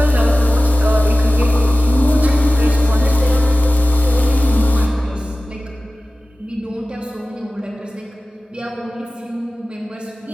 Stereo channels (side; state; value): both; normal; correlation 0.96